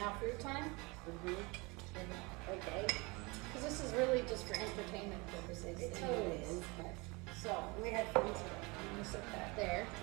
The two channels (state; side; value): quieter; left; 26.4 dB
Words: fruit time? Okay. Because this is really just for entertainment purposes. It totally anyways. is. So, We had fun today. I'm going to set that there.